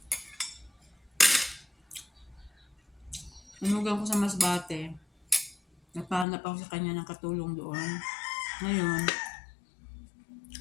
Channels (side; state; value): right; drops out; at 6.2 s